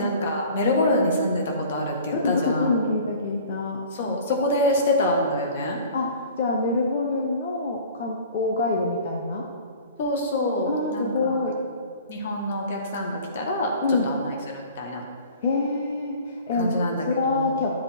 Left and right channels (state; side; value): inverted; both; correlation -0.45